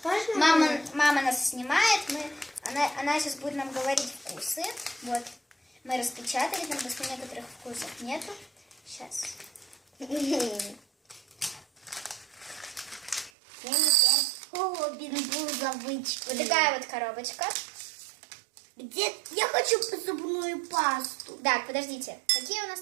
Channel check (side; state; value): left; drops out; at 13.3 s